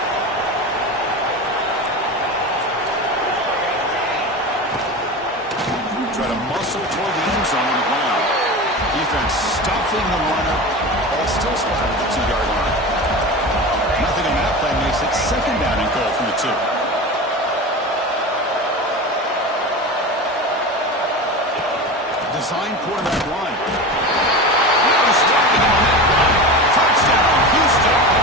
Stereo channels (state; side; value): normal; both; correlation 0.28